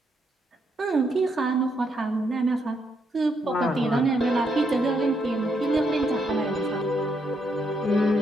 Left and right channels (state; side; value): normal; both; correlation 0.77